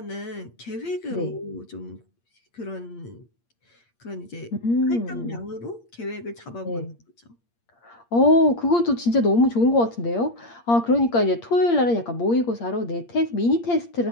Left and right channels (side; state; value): right; late; 8.6 ms